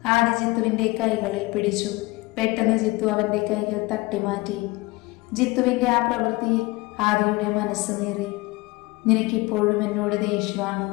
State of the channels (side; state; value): right; quieter; 22.8 dB